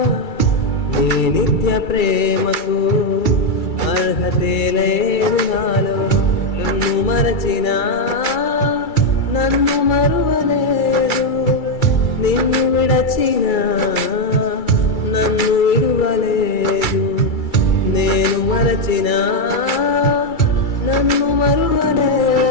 నీ నిత్య ప్రేమకు అర్హతే లేదు నాలో. నన్ను మరచినా నన్ను మరువలేదు, నిన్ను విడచినా నన్ను విడువలేదు. నేను మరచినా నన్ను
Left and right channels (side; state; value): right; late; 2.3 ms